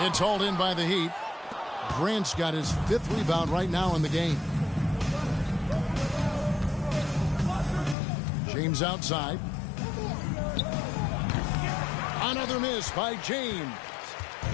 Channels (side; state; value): right; drops out; at 8.0 s